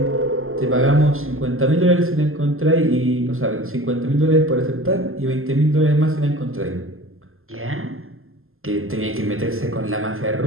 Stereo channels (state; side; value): late; left; 0.61 ms